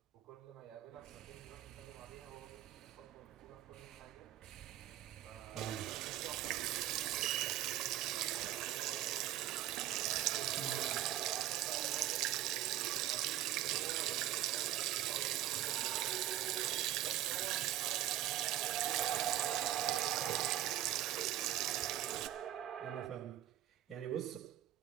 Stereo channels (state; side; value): quieter; left; 12.9 dB